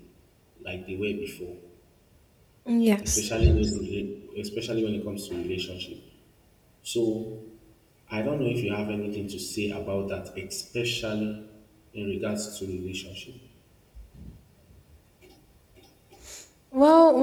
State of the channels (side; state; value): both; identical; correlation 1.00